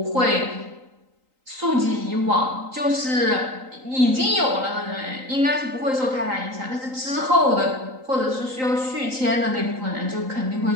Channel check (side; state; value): left; late; 3.9 ms